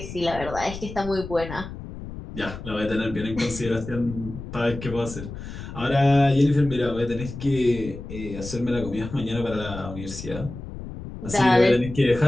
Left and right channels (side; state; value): left; noise; rumble, 11 dB below the sound